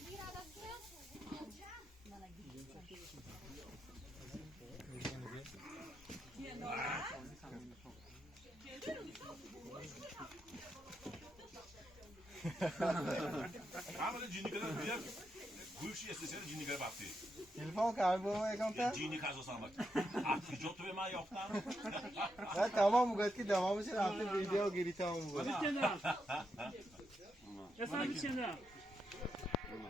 Ama cini kadar büyük. Gülşi istesene cini kadar baktı. تلفن کار بابا اگم Cini kazı sanmak. Artık jotu ve ma yoktan. نه تمام میگه که تمامش رفته ویدیو گیری تمام میگه Kendiler. Efendim kendiler.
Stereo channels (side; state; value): both; normal; correlation 0.84